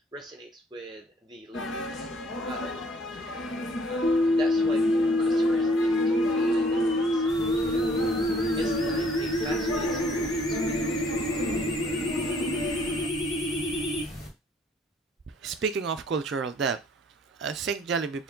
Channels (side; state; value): both; normal; correlation 0.60